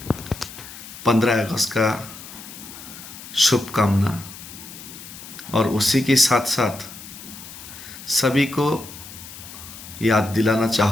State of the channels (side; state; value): left; noise; hiss, 14 dB below the sound